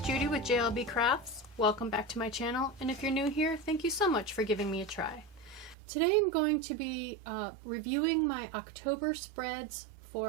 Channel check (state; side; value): drops out; left; at 5.8 s